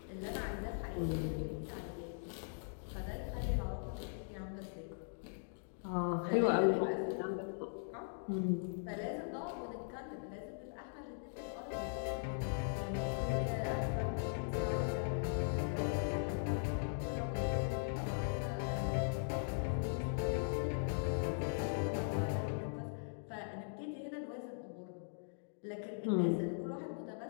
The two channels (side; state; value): right; silent; digital silence